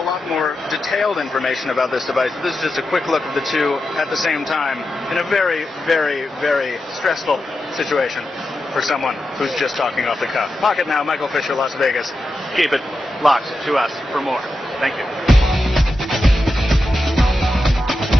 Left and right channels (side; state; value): both; normal; correlation 0.89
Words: a lot more detailed information about this device. This is just a quick look of the two at the same time in a very, very, very stressful situation for someone who's just talking off the cuff. Pocket Now, Michael Fisher, Las Vegas. Keep it locked to us for more. Thank you.